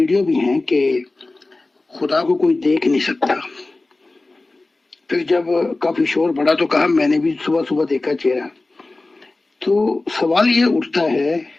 بھی ہیں، کہ خدا کو کوئی دیکھ نہیں سکتا۔ پھر جب کافی شور بڑھا تو کہا میں نے بھی صبح صبح دیکھا چہرہ۔ تو سوال یہ اٹھتا ہے،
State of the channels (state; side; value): quieter; right; 3.2 dB